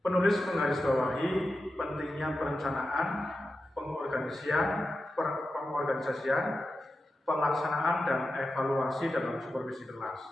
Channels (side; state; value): both; normal; correlation 0.91